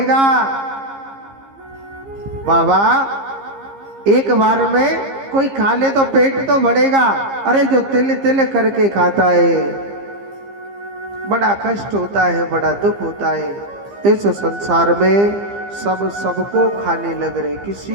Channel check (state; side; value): late; left; 15 ms